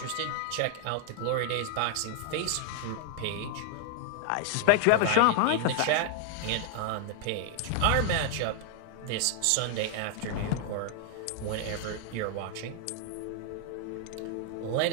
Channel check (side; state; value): both; different; correlation 0.00